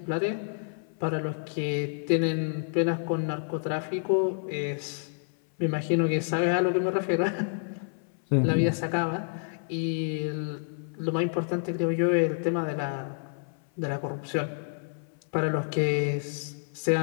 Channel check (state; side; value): silent; right; 59 dB below the other